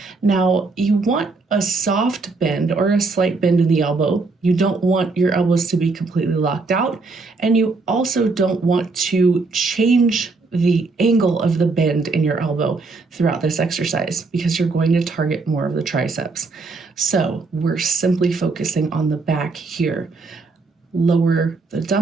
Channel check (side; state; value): left; quieter; 3.9 dB